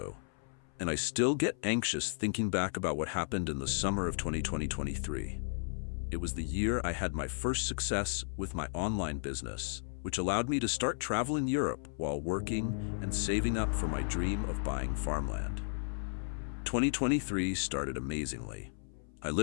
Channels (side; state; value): right; silent; 55 dB below the other